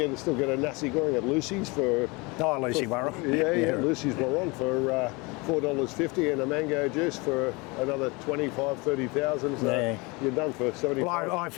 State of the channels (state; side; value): quieter; right; 26.6 dB